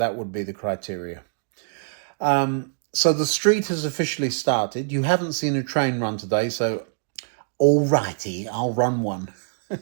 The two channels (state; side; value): silent; left; digital silence